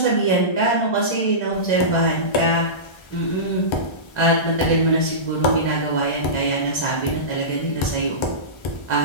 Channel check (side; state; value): right; late; 1.3 ms